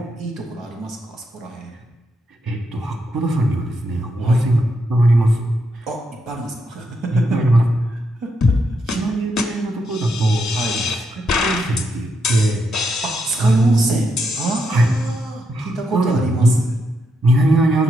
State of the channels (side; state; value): both; normal; correlation 0.81